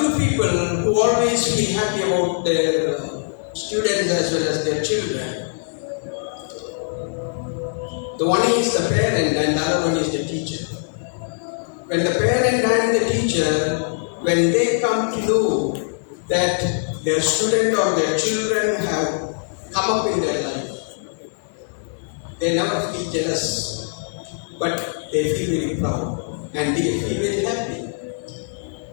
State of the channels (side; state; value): right; silent; digital silence